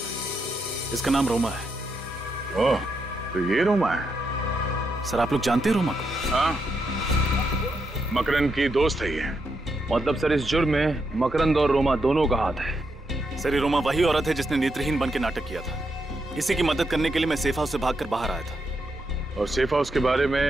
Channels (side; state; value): both; normal; correlation 0.82